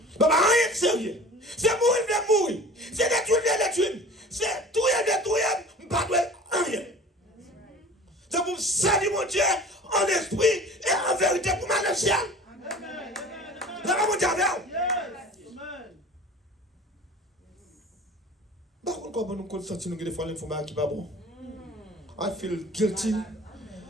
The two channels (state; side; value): normal; both; correlation 0.42